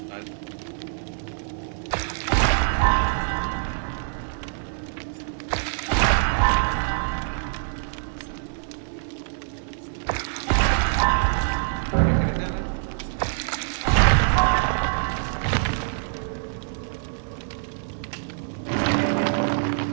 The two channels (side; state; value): left; silent; digital silence